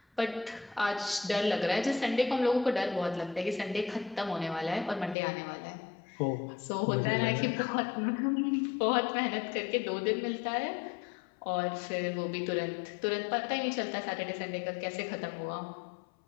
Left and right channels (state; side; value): drops out; right; at 5.2 s